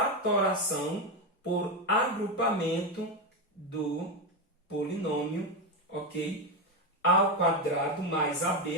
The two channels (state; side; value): normal; both; correlation 0.11